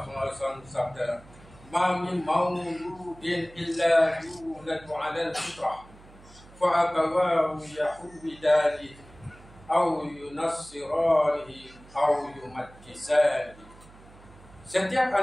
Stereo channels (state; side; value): noise; right; hum, 23 dB below the sound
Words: SAW bersabda, "Ma min mauludin illa yuladu 'ala al-fitrah, fa abawahu yahudanihi aw yunassiranihi aw yumajjisanihi." Setiap